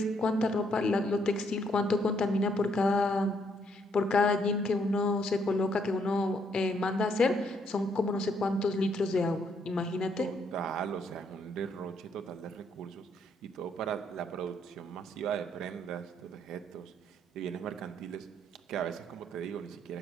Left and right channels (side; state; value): both; normal; correlation 0.72